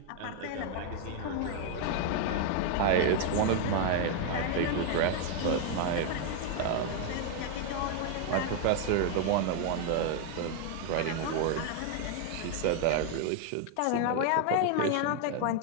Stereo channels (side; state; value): both; different; correlation 0.00